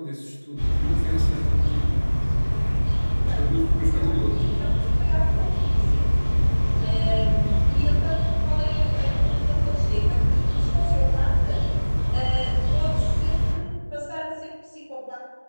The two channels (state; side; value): inverted; both; correlation -1.00